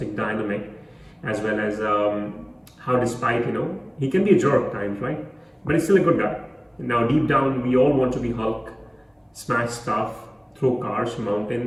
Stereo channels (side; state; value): both; identical; correlation 1.00